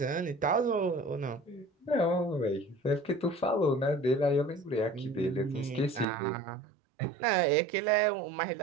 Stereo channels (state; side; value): drops out; left; at 6.1 s